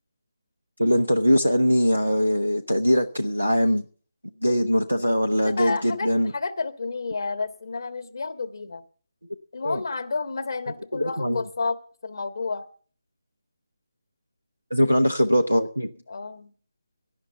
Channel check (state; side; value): inverted; both; correlation -0.96